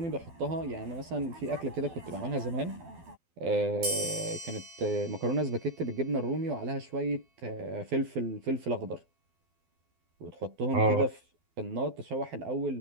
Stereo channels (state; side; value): late; left; 12 ms